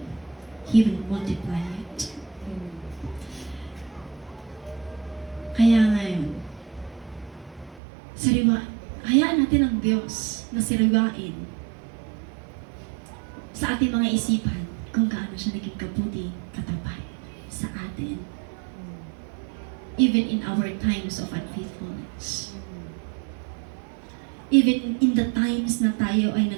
He will multiply it. Kaya ngayon, hayaan natin ang Diyos na sariwain sa ating mga isipan kung gaano siya naging kabuti, katapat sa atin. Even in our times of unfaithfulness. Even in the times na tayo ay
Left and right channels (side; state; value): left; drops out; at 7.8 s